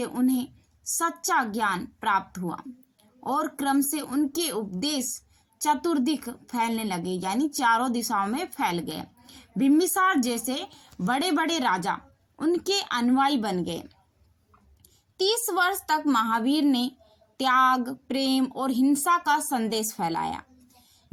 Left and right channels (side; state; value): both; identical; correlation 1.00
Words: उन्हें सच्चा ज्ञान प्राप्त हुआ और क्रम से उनके उपदेश चतुर्दिक फैलने लगे, यानी चारों दिशाओं में फैल गए। बिम्बिसार जैसे बड़े बड़े राजा उनके अनुयायी बन गए। 30 वर्ष तक महावीर ने त्याग, प्रेम और हिंसा का संदेश फैलाया।